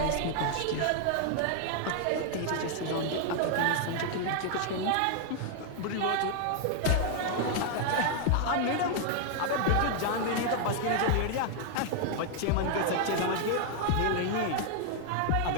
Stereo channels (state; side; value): different; both; correlation 0.00